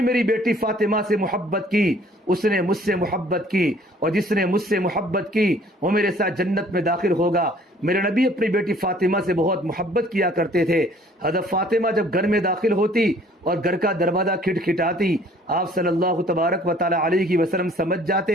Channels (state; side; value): normal; both; correlation 0.56